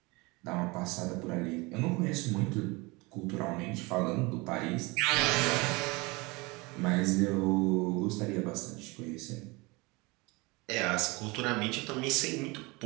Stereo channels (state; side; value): quieter; left; 25.3 dB